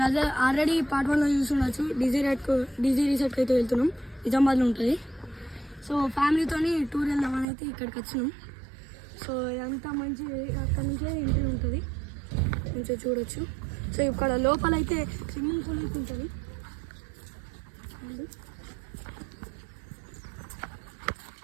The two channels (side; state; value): left; drops out; at 7.5 s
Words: అదే ఆల్రెడీ పార్ట్ 1లో చూస్తుండొచ్చు. డీజీ రిసార్ట్కి అయితే వెళ్తున్నాం. నిజామాబాద్లో ఉంటుంది. సో ఫ్యామిలీతోని టూర్ వెళ్దామని అయితే ఇక్కడికి వచ్చినాం. సో ఇదంతా మంచి అక్కడ నుంచే ఎంట్రీ ఉంటుంది, మంచిగా చూడొచ్చు. సో ఇక్కడ లోపల అయితే స్విమ్మింగ్ పూల్ అయితే ఉంటుంది.